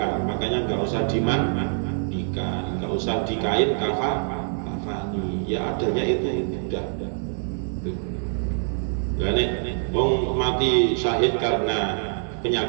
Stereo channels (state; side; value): silent; left; 62 dB below the other